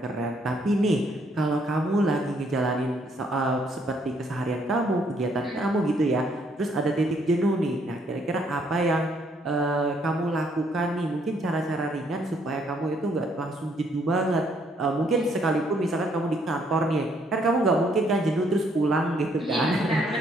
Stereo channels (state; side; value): normal; both; correlation 0.68